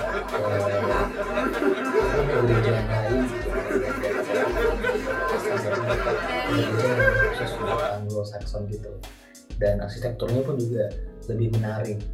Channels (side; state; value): both; identical; correlation 1.00